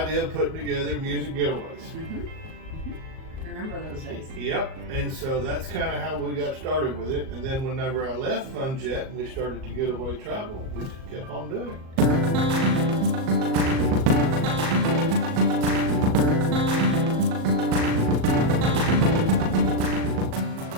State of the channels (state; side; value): late; left; 38 ms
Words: of putting together music getaways. Remember those days? Yep, and so that's kind of how we got started with it. And then whenever I left Funjet and we started to Getaway Travel, we just kept on doing it.